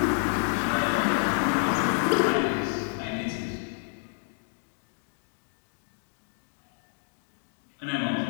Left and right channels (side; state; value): right; silent; 58 dB below the other